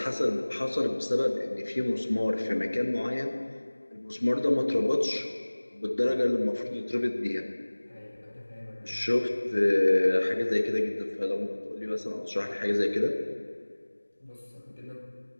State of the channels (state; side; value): inverted; both; correlation -1.00